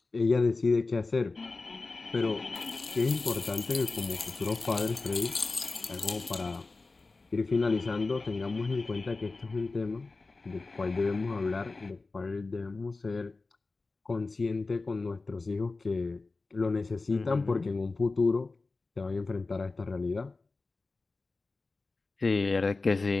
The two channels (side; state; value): right; quieter; 3.7 dB